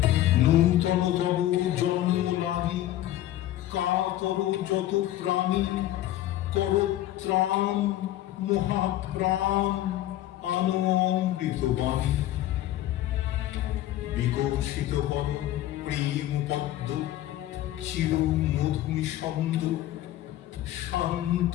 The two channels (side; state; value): right; quieter; 13.9 dB